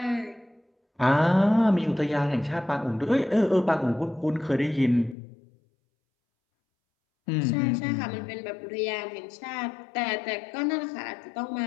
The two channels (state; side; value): drops out; right; at 5.2 s